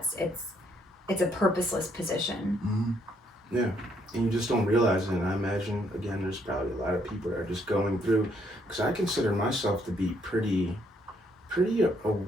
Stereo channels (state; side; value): normal; both; correlation 0.71